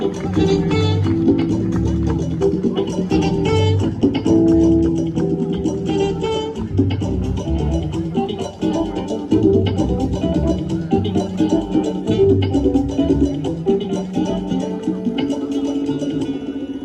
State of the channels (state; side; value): identical; both; correlation 1.00